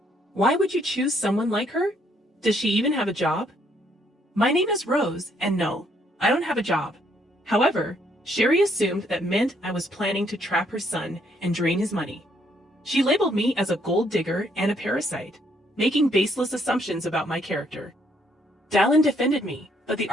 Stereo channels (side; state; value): both; normal; correlation 0.69